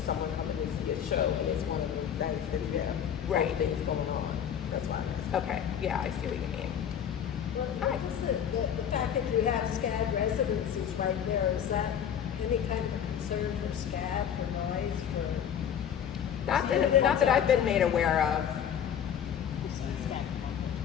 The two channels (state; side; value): quieter; right; 8.8 dB